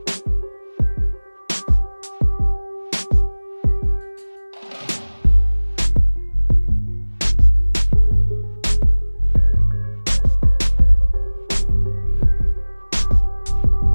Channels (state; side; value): inverted; both; correlation -1.00